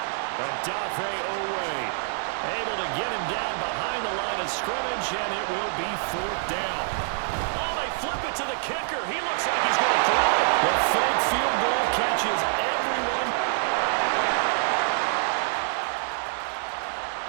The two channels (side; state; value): left; silent; 61 dB below the other